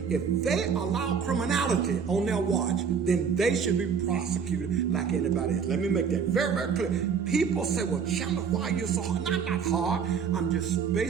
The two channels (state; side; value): quieter; left; 6.5 dB